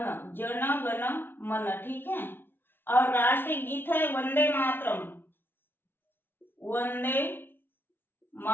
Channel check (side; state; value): right; late; 0.10 ms